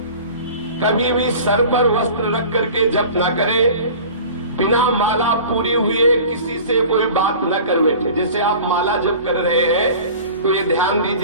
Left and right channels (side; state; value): both; inverted; correlation -0.41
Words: कभी भी सर पर वस्त्र रख करके जप न करे, बिना माला पूरी हुए किसी से कोई बात न कर बैठे। जैसे आप माला जप कर रहे हैं तो ये ध्यान